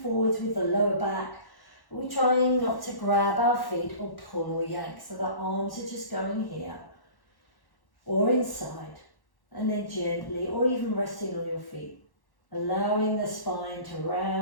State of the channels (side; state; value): right; late; 1.1 ms